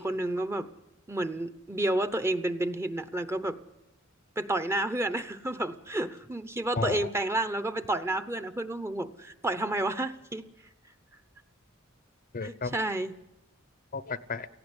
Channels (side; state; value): both; normal; correlation 0.64